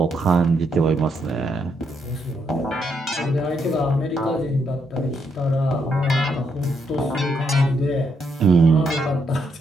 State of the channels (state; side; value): normal; both; correlation 0.77